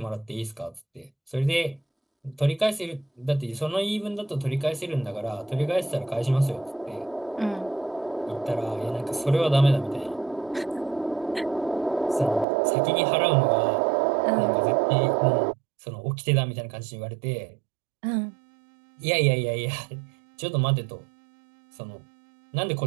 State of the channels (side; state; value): left; drops out; at 12.5 s